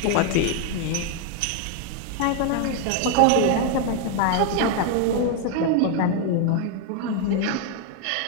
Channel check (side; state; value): both; different; correlation 0.01